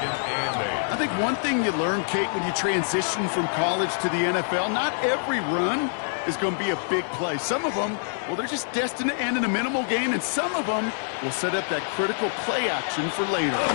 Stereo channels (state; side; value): silent; right; 61 dB below the other